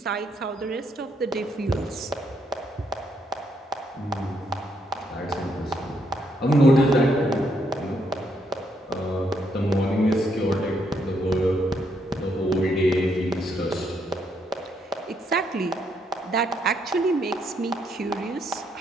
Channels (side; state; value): both; normal; correlation 0.76